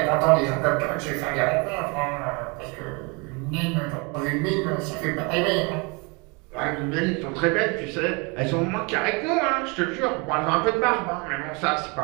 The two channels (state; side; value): quieter; left; 30.1 dB